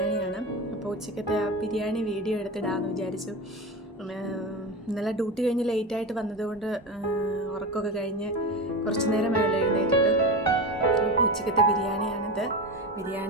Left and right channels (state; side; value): normal; both; correlation 0.23